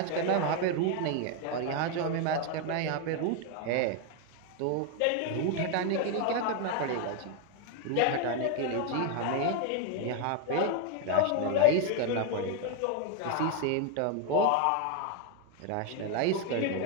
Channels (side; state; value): both; different; correlation 0.01